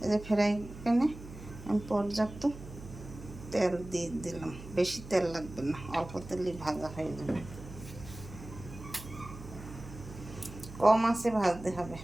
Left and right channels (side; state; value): right; noise; hum, 14 dB below the sound